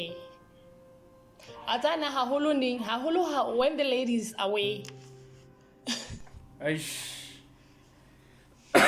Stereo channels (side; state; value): both; identical; correlation 1.00